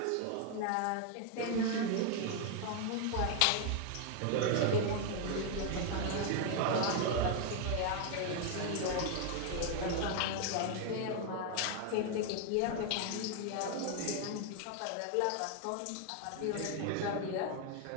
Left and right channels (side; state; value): both; different; correlation 0.01